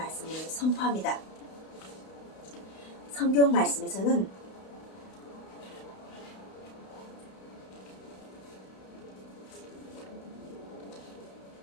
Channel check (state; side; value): late; right; 32 ms